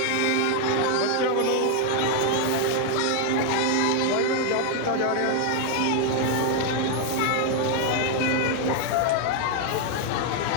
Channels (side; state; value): both; different; correlation 0.00